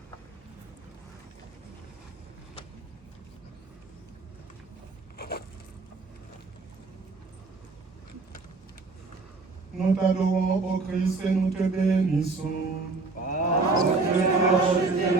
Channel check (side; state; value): left; quieter; 3.8 dB